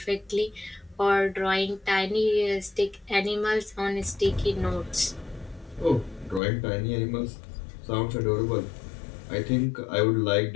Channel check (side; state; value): right; drops out; at 6.4 s